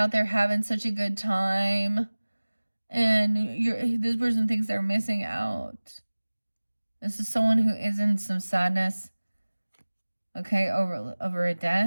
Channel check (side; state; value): both; inverted; correlation -1.00